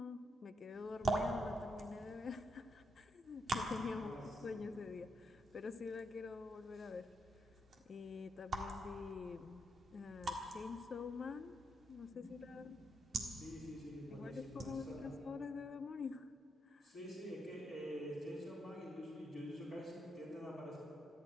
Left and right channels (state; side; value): normal; both; correlation 0.80